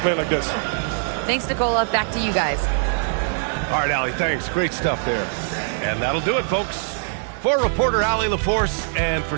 like this. Thanks, Nicola. Back to you guys. All right, Allie, thanks. Great stuff there. And that'll do it, folks. For reporter Allie LaForce and for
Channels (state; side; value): silent; left; digital silence